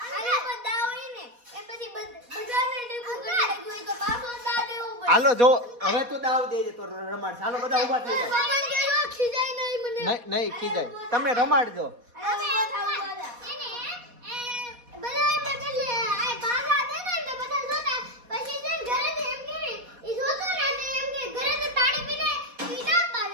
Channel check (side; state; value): left; late; 4.2 ms